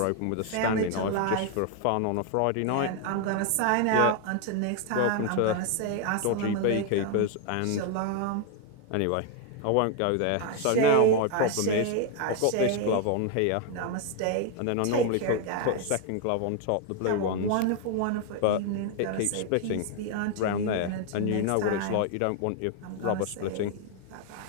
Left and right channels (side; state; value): both; different; correlation 0.01